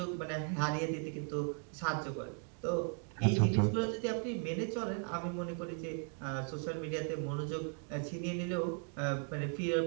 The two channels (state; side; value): quieter; left; 36.8 dB